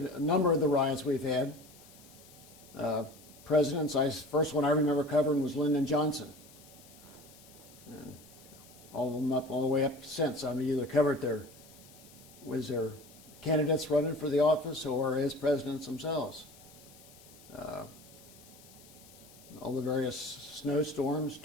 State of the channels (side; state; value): left; noise; hiss, 22 dB below the sound